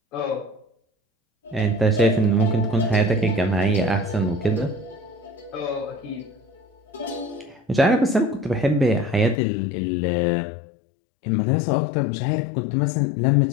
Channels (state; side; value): drops out; right; at 9.4 s